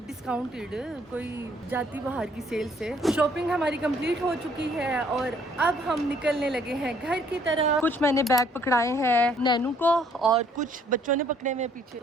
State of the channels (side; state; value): both; normal; correlation 0.63